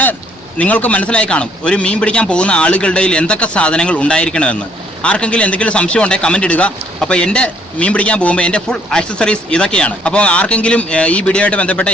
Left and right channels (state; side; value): normal; both; correlation 0.65